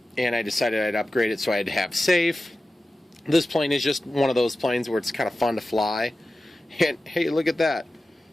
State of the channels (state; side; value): normal; both; correlation 0.94